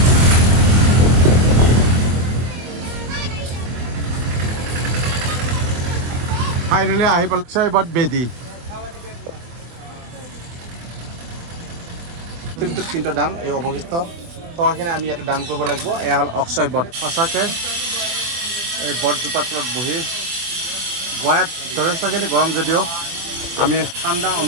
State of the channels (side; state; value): left; late; 24 ms